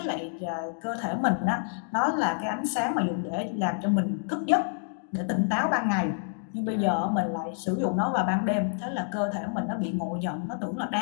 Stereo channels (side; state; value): right; silent; 59 dB below the other